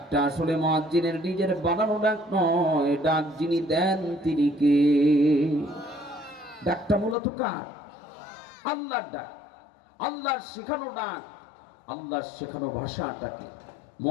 আসলে মুয়াজ্জিনের নিজের বানানো ডাক নয়, ডাক যিনি দেন তিনি কে? ডাকটা মূলত কার? আল্লাহর ডাক, আল্লাহর শেখানো ডাক, আল্লাহর শেখানো ভাষাটাকে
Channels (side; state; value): right; drops out; at 7.2 s